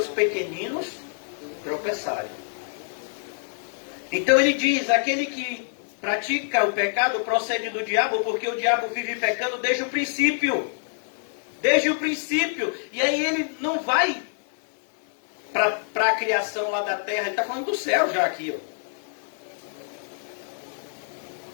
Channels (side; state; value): right; silent; 61 dB below the other